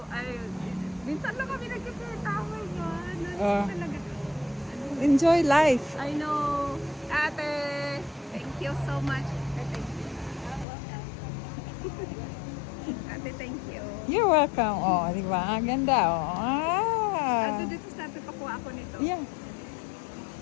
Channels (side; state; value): right; drops out; at 10.7 s